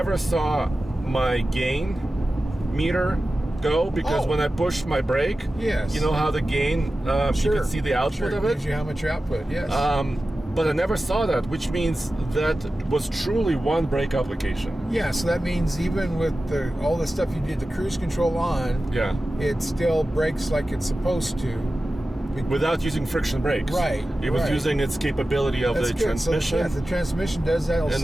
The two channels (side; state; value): both; normal; correlation 0.94